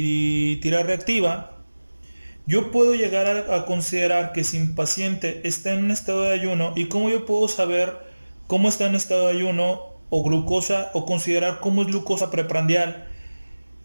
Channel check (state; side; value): inverted; both; correlation -1.00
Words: tira reactiva, yo puedo llegar a considerar que si mi paciente está en un estado de ayuno, y cómo yo puedo saber cómo está en estado de ayuno o glucosa, o considerar cómo es glucosa preprandial,